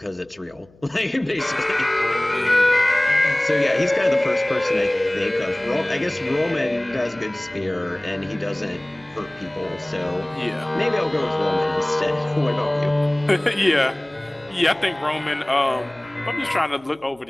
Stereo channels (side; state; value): left; noise; hum, 29 dB below the sound